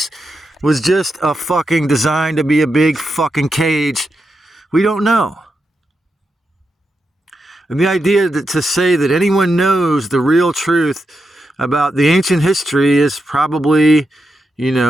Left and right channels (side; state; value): both; normal; correlation 0.86